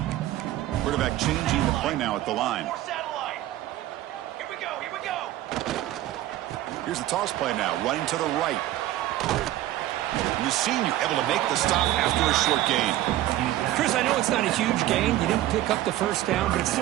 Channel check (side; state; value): left; quieter; 14.4 dB